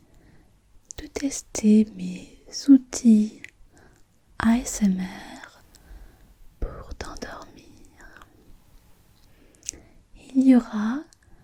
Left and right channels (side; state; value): both; identical; correlation 1.00